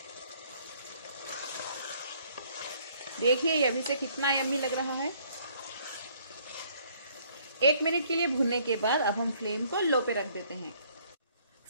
देखिए ये अभी से कितना यम्मी लग रहा है। 1 मिनट के लिए भूनने के बाद अब हम फ्लेम को लो पे रख देते हैं।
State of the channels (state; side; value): inverted; both; correlation -0.62